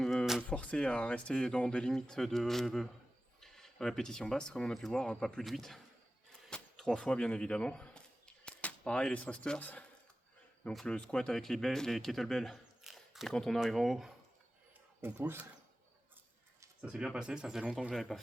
forcé à rester dans des limites de répétition basse comme on a pu voir, hein, pas plus de 8. 3 fois bien évidemment. Pareil les thrusters. Donc le squat avec les kettlebells. Et quand on arrive en haut, on pousse. Ça s'est bien passé, ça faisait longtemps que je n'avais pas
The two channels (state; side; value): normal; both; correlation 0.95